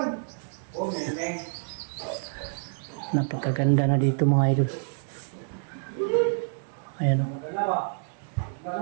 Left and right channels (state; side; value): silent; left; digital silence